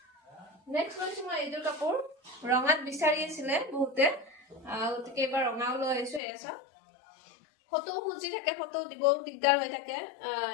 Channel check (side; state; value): right; drops out; at 6.2 s